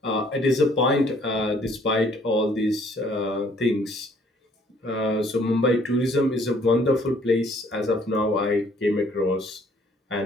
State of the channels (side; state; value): both; normal; correlation 0.61